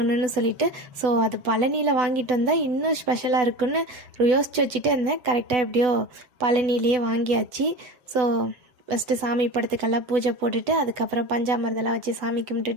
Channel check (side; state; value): left; late; 8.0 ms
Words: சொல்லிட்டு. ஸோ அது பழனியில் வாங்கிட்டு வந்தால் இன்னும் ஸ்பெஷலாக இருக்குன்னு யோசித்து வச்சுட்டு இருந்தேன். கரெக்டாக எப்படியோ பழனிலேயே வாங்கியாச்சு. ஸோ ஃபஸ்ட்டு சாமி படத்துக்கெல்லாம் பூஜை போட்டுட்டு அதுக்கப்புறம் பஞ்சாமிர்தெல்லாம் வச்சு சாமி